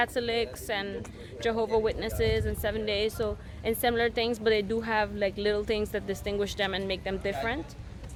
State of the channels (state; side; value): identical; both; correlation 1.00